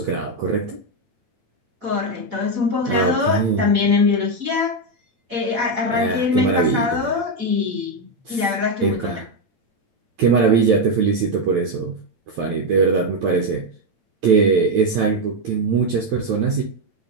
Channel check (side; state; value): left; late; 8.8 ms